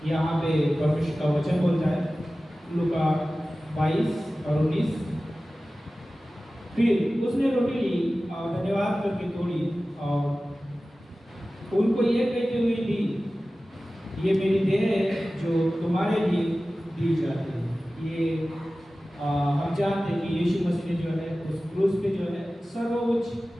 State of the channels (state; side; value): normal; both; correlation 0.96